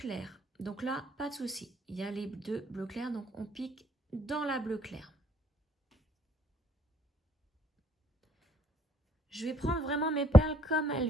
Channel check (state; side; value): normal; both; correlation 0.68